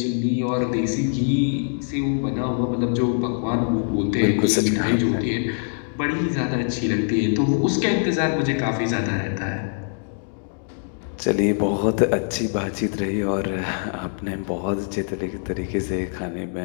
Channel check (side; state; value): right; silent; digital silence